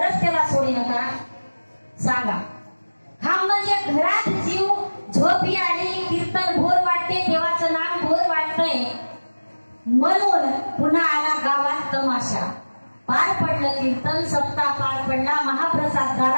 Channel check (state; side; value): inverted; both; correlation -1.00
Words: त्याला सोडीनं का सांगा? खांब म्हणजे घरात जीव झोपी आली, कीर्तन भोर वाटते, देवाचं नाम भोर वाटतंय म्हणून पुन्हा आला गावात तमाशा. पार पडलं कीर्तन, सप्ताह पार पडला, महाप्रसाद